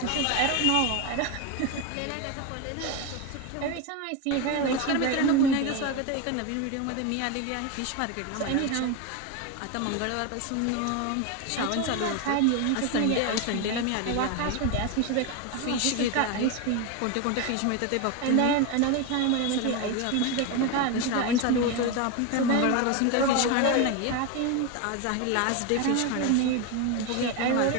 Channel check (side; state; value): both; different; correlation 0.02